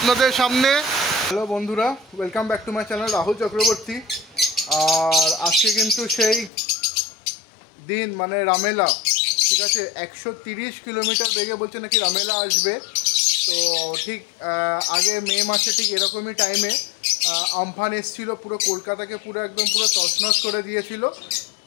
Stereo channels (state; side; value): drops out; right; at 6.5 s